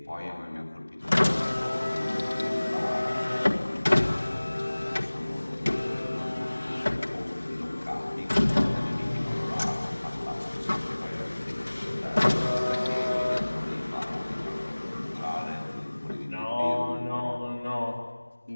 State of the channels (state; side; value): inverted; both; correlation -1.00